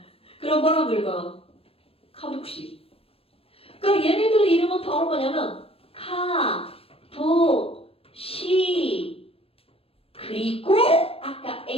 그럼 뭐라고 읽어? 카복시. 그러니까 얘네들 이름은 바로 뭐냐면 카복시. 그리고 아까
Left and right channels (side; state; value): right; late; 0.28 ms